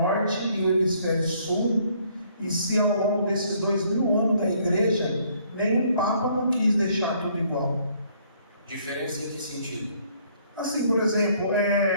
e o hemisfério sul? E se ao longo desses 2000 anos da igreja, nenhum Papa não quis deixar tudo igual? Diferença em que sentido? Assim, por exemplo,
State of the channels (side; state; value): both; inverted; correlation -0.64